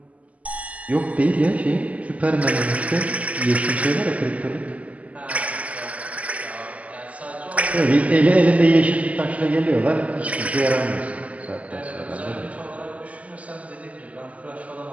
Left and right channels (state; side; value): late; left; 0.071 ms